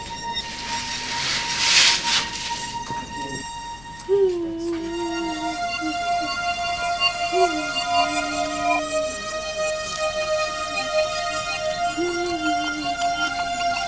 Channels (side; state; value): left; noise; hum, 19 dB below the sound